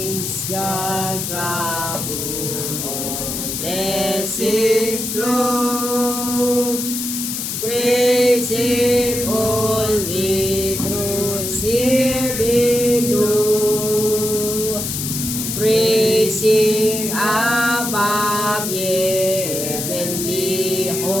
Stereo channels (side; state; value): left; noise; hiss, 4 dB below the sound